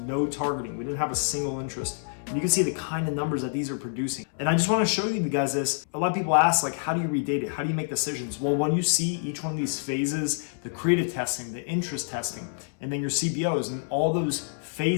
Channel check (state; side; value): silent; right; 60 dB below the other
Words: no targeting. We didn't have a single interest. And you can see the kind of numbers that these are producing. And I just want to show you guys this. A lot of people ask, like, how do you read data? How do you make decisions? Well, when you see each one of these phases, the creative testing, the interest testing, and then your CBOs, and all those